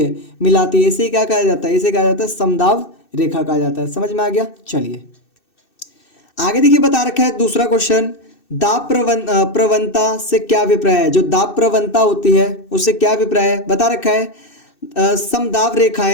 मिलाती है। इसे क्या कहा जाता है, इसे कहा जाता है समदाब रेखा कहा जाता है। समझ में आ गया। चलिए आगे देखिए बता रखा है दूसरा क्वेश्चन, दाब प्रवणता से क्या अभिप्राय है। जो दाब प्रवणता होती है उससे क्या अभिप्राय है, बता रखा है समदाब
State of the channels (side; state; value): right; late; 2.6 ms